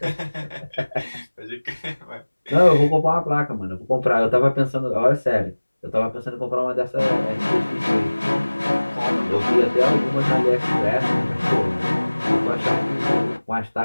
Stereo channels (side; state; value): both; inverted; correlation -1.00